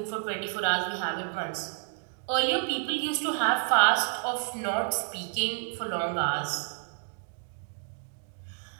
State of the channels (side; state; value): left; silent; 58 dB below the other